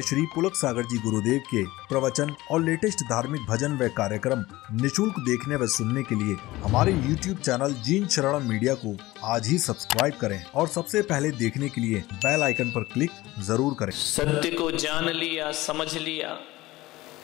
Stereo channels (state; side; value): quieter; right; 18.7 dB